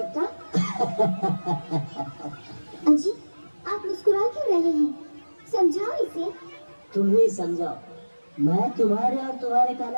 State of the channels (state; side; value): inverted; both; correlation -1.00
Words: अजी आप मुस्कुरा क्यों रहे हैं? समझाओ इसे। तुम ही समझाओ, मैं तुम्हारे और तुम्हारे